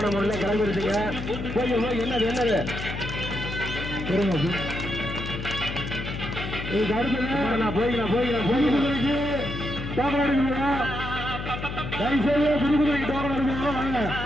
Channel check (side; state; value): left; noise; hum, 7 dB below the sound